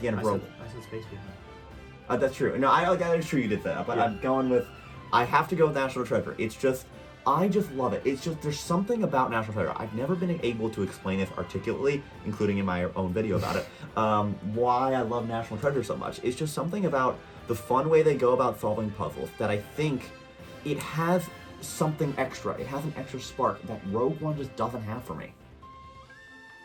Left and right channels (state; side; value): identical; both; correlation 1.00